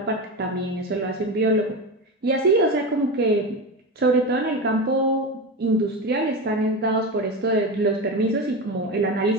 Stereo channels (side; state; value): both; normal; correlation 0.21